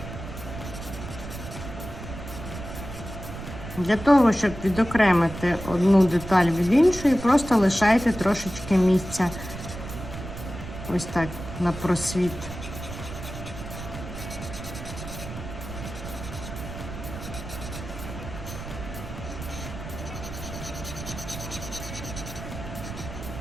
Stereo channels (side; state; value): right; noise; rumble, 10 dB below the sound